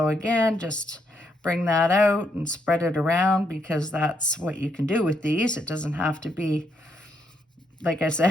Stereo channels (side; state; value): both; normal; correlation 0.76